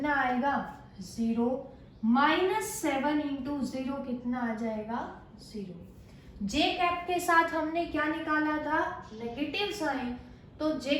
आएगा 0, -7 इंटू 0 कितना आ जाएगा 0। जे कैप के साथ हमने क्या निकाला था नेगेटिव साइन, तो जे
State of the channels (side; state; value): both; identical; correlation 1.00